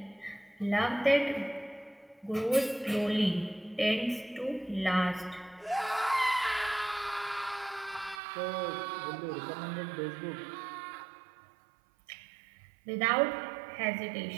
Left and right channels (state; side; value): drops out; left; at 8.2 s